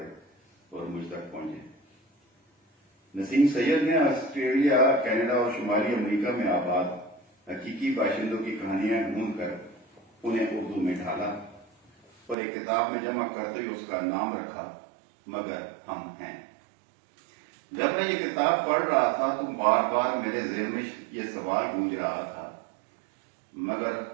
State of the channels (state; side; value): drops out; left; at 12.4 s